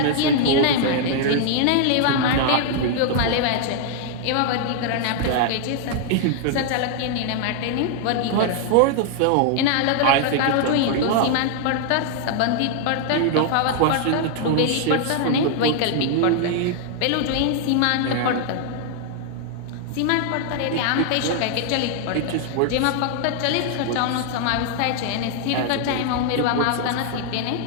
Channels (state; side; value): different; both; correlation 0.00